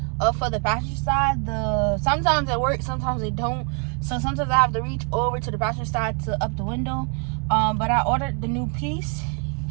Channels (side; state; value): left; quieter; 39.5 dB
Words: for the passenger side, sometimes it works, sometimes it don't. So sometimes I have to reach over to the passenger side to up the window. But I ordered the new piece.